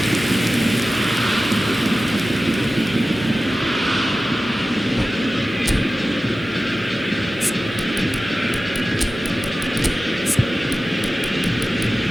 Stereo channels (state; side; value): normal; both; correlation 0.95